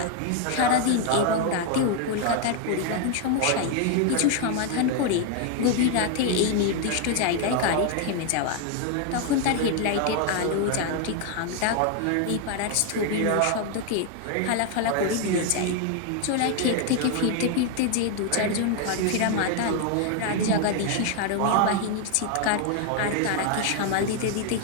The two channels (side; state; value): both; different; correlation 0.00